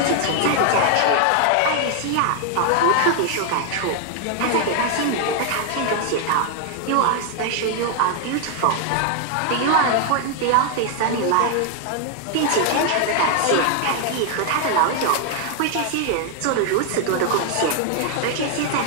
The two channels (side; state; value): both; different; correlation 0.00